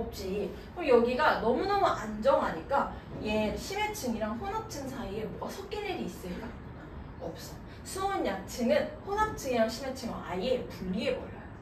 그럼 여기가 너무너무 안정하니까 얘 심해층이랑 혼합층 사이에 뭐가 섞일 일이 있을까? 없어. 수온약층은 혼합층이랑 심해층을 아예 분리해버려요.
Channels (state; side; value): identical; both; correlation 1.00